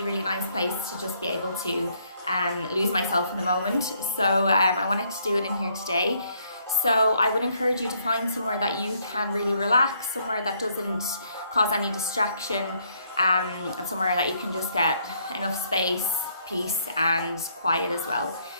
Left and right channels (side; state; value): both; inverted; correlation -0.70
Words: nice place to just be able to lose myself in the moment. So I wanted to do it in here today. So I would encourage you to find somewhere that you can really relax, somewhere that doesn't cause any distraction, and somewhere that you can just get enough space, peace and quiet as well.